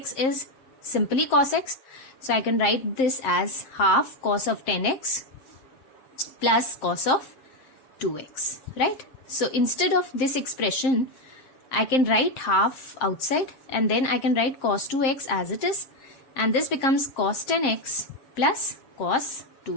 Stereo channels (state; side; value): late; right; 7.6 ms